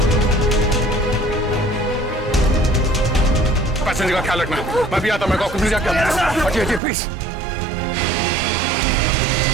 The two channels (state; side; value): drops out; left; at 6.8 s